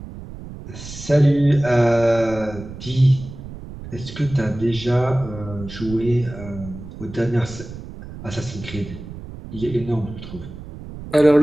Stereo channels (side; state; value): right; noise; rumble, 13 dB below the sound